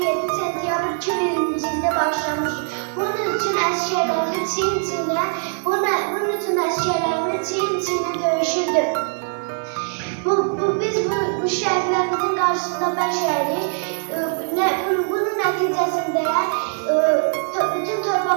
sentyabr 2020-ci ildə başlamış. Bunun üçün əsgərlərimiz çiyin-çiyinə döyüşürdü. Biz bu şəhidlərimizin qarşısında bəşərik. Bunun nəticəsində bütün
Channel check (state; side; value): silent; left; 64 dB below the other